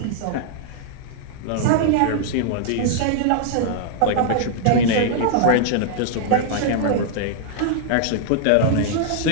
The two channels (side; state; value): both; different; correlation -0.01